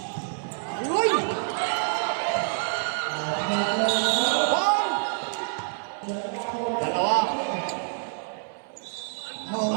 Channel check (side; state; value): left; silent; 58 dB below the other